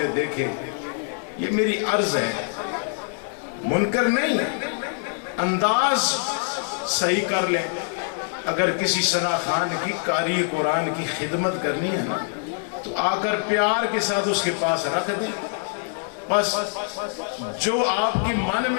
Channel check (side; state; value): right; silent; 58 dB below the other